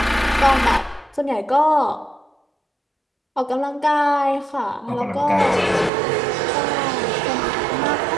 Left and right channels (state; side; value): drops out; left; at 5.9 s